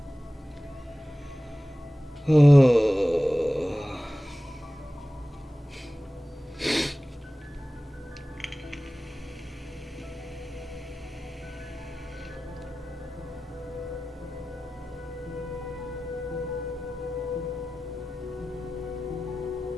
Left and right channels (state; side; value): normal; both; correlation 0.96